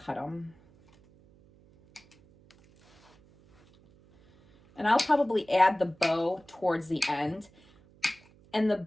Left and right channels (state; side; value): noise; right; hum, 29 dB below the sound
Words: them. And I'll probably add the bow towards the end. And the